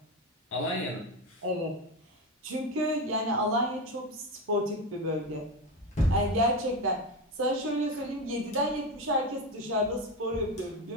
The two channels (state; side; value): normal; both; correlation 0.18